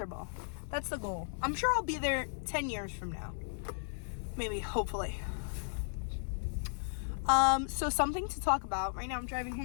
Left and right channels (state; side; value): silent; right; digital silence